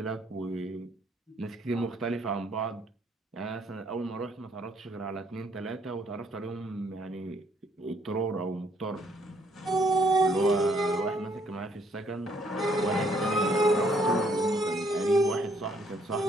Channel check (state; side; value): normal; both; correlation 0.67